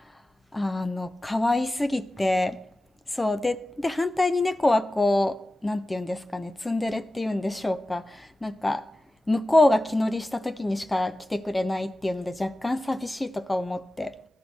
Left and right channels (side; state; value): both; normal; correlation 0.95